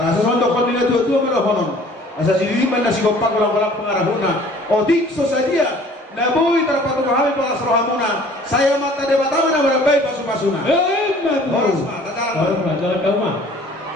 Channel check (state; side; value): normal; both; correlation 0.52